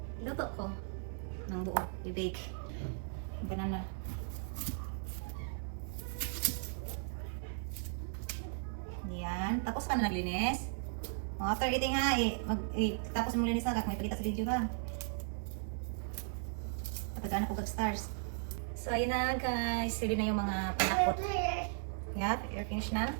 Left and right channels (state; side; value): silent; left; 53 dB below the other